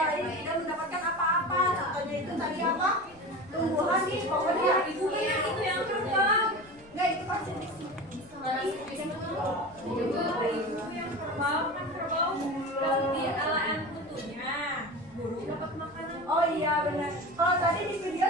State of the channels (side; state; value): left; noise; rumble, 26 dB below the sound